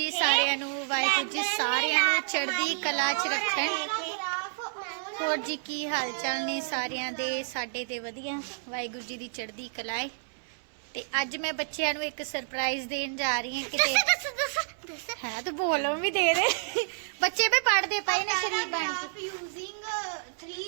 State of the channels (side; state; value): left; silent; 58 dB below the other